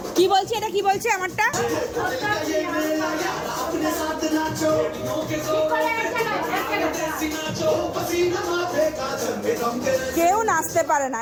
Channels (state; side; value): identical; both; correlation 1.00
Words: কি বলছে এটা, কি বলছে আমারটা? কেউ নাচতে পারে না,